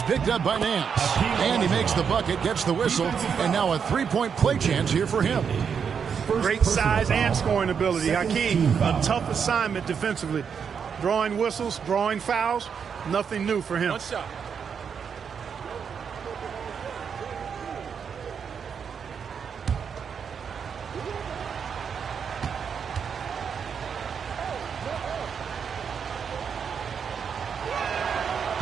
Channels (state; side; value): quieter; left; 6.8 dB